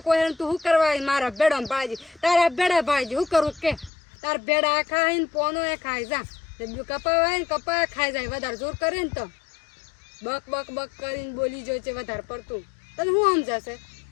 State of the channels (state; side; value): drops out; right; at 3.9 s